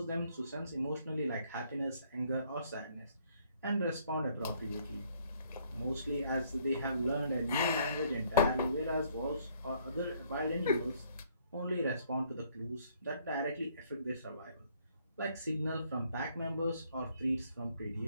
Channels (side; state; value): both; inverted; correlation -0.65